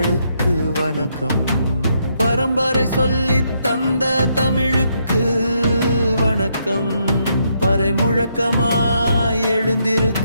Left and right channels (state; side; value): inverted; both; correlation -0.76